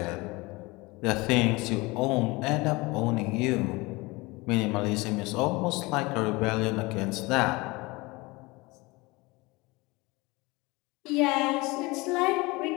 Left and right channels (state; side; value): quieter; right; 23.6 dB